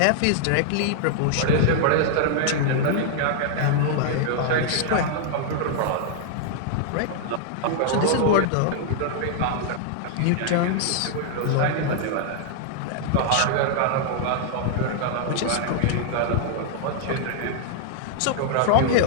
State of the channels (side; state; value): both; different; correlation -0.01